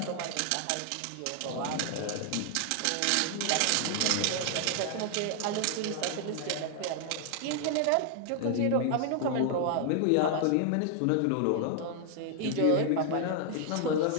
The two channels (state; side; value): different; both; correlation 0.00